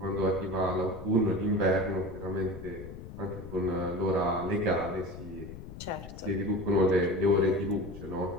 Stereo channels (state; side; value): noise; left; rumble, 12 dB below the sound